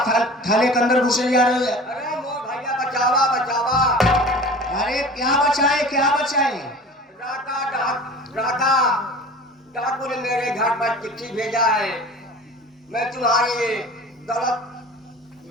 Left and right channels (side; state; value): both; normal; correlation 0.40